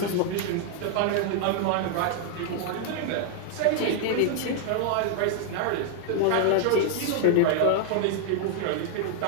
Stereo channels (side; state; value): both; different; correlation 0.00